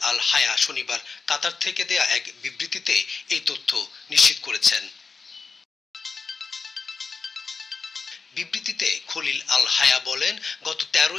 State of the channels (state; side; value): quieter; right; 4.8 dB